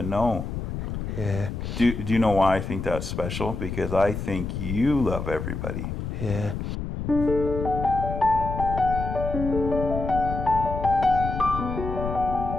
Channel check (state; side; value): noise; left; rumble, 5 dB below the sound